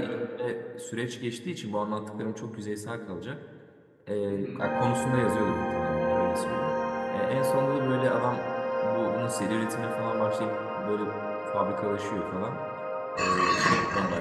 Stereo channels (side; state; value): both; identical; correlation 1.00